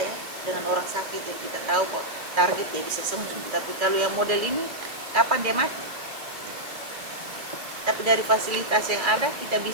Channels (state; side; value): late; left; 2.5 ms